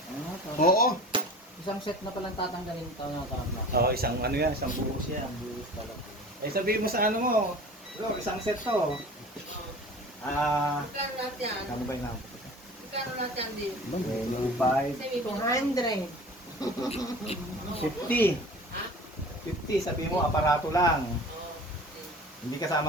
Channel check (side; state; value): both; normal; correlation 0.40